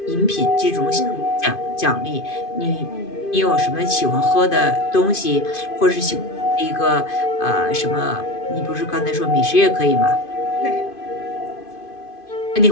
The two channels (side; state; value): right; late; 2.5 ms